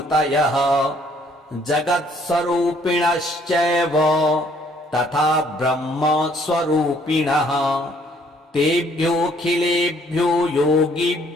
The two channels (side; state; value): both; normal; correlation 0.63